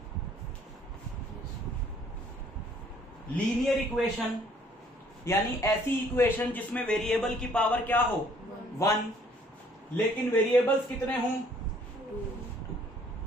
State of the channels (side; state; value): both; normal; correlation 0.60